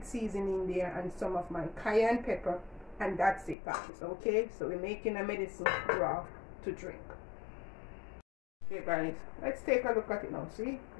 seasoning there and some of my cayenne pepper, and that's it, guys. Okay, so we're making a medicine broth to drink. Okay guys, let's take a look at it now. See,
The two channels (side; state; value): right; drops out; at 3.6 s